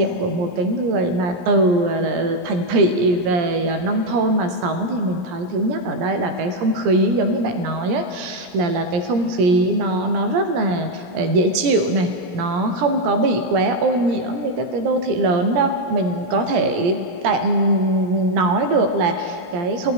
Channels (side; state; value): left; late; 17 ms